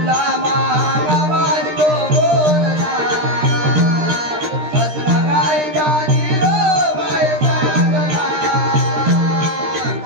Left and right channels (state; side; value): late; left; 13 ms